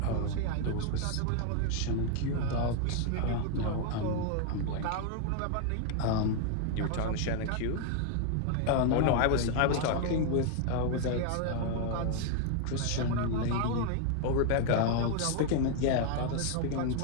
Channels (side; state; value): both; different; correlation 0.00